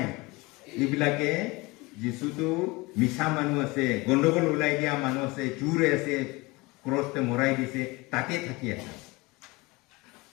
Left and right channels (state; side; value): quieter; right; 23.7 dB